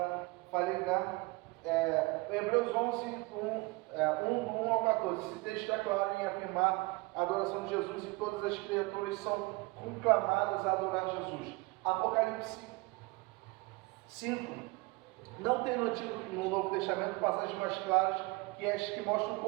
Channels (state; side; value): quieter; left; 24.5 dB